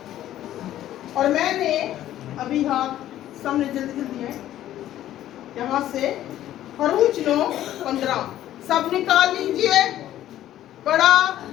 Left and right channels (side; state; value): right; quieter; 12.8 dB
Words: और मैंने अभी हाथ सामने जल्दी जल्दी है, यहाँ से खरूज 9:15 सब निकाल लीजिए। बड़ा